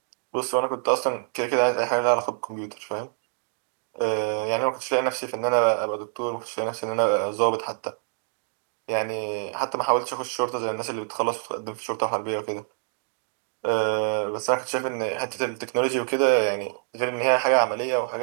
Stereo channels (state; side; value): silent; left; digital silence